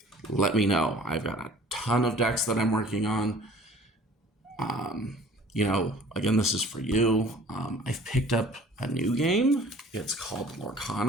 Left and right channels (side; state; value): both; normal; correlation 0.50